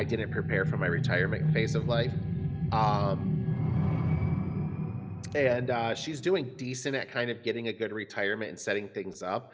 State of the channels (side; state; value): both; identical; correlation 1.00